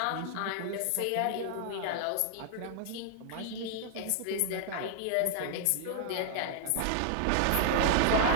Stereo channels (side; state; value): both; different; correlation 0.00